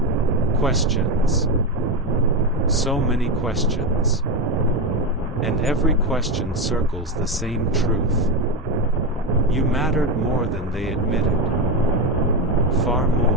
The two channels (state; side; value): normal; both; correlation 0.13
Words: Questions. So many questions. And every question circles the same truth. You mattered more than they admitted. Far